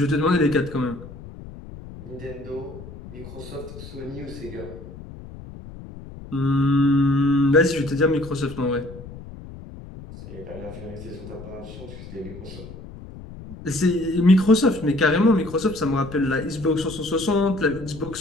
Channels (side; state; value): left; noise; rumble, 15 dB below the sound